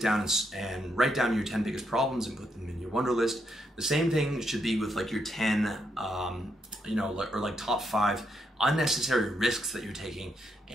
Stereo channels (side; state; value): both; normal; correlation 0.78